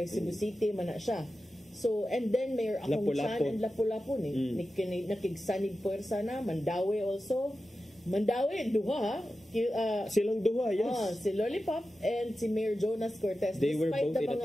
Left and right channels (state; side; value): normal; both; correlation 0.93